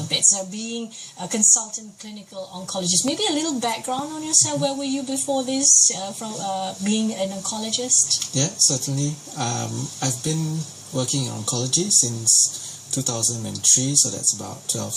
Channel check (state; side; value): identical; both; correlation 1.00